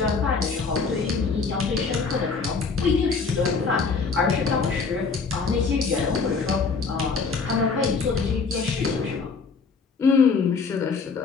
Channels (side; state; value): right; quieter; 4.9 dB